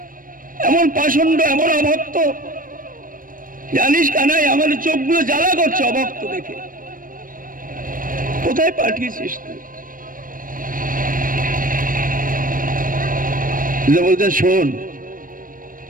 এমন পাষণ্ড, এমন অভক্ত, জানিস কানাই আমাদের চোখগুলো জ্বালা করছে অভক্ত দেখে, কোথায় পাঠিয়েছিস তুই? বলছেন, শোন,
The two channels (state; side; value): late; left; 0.40 ms